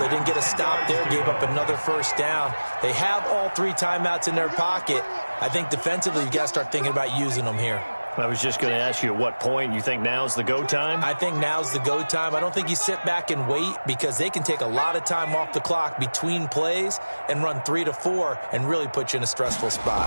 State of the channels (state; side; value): inverted; both; correlation -1.00